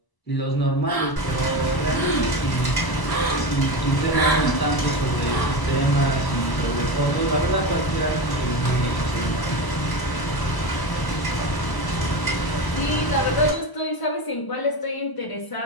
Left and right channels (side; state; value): right; late; 1.0 ms